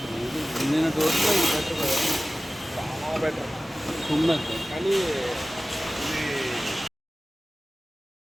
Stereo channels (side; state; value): both; normal; correlation 0.97